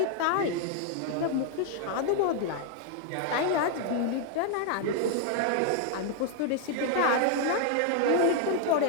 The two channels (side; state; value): both; different; correlation 0.00